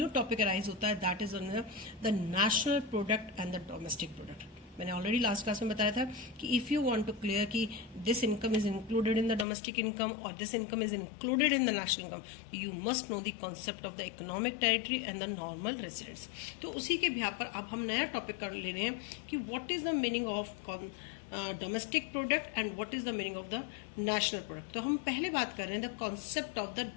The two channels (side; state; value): right; drops out; at 9.5 s